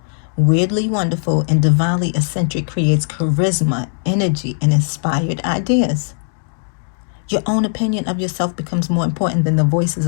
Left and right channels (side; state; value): right; silent; digital silence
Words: weirdly wonderful, and divinely eccentric creates charisma, energy, and inspired ideas. Your own opinion of yourself becomes more important than the voices